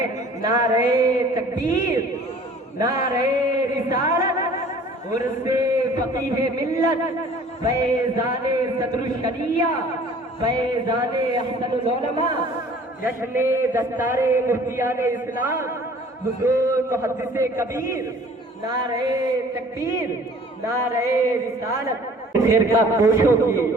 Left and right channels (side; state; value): both; normal; correlation 0.51